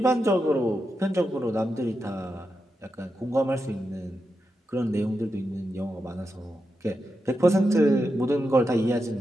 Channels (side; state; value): both; normal; correlation 0.88